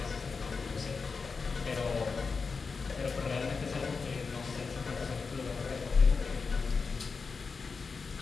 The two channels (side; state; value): right; quieter; 4.8 dB